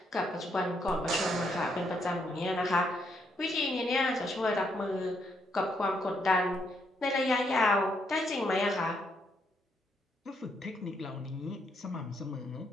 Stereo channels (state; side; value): normal; both; correlation 0.75